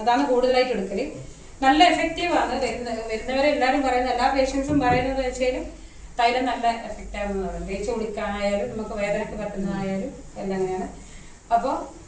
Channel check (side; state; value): both; identical; correlation 1.00